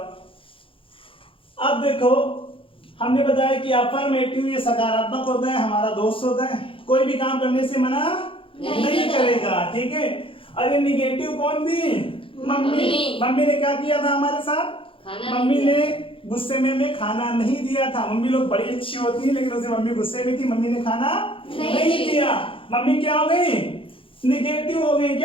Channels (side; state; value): right; late; 0.26 ms